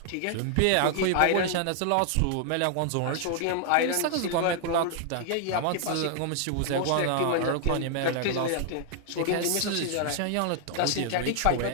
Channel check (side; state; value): both; different; correlation 0.00